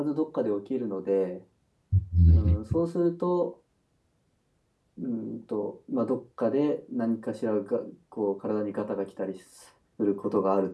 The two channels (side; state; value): both; identical; correlation 1.00